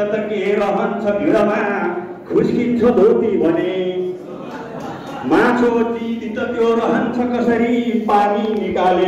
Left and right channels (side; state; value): both; identical; correlation 1.00